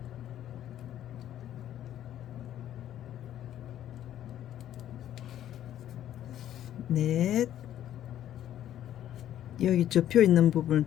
넷, 여기 접혀 있는 부분을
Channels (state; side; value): quieter; right; 11.5 dB